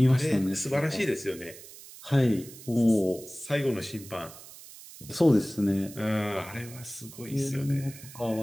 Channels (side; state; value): right; noise; hiss, 17 dB below the sound